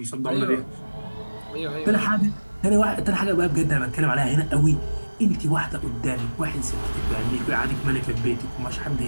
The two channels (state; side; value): inverted; both; correlation -1.00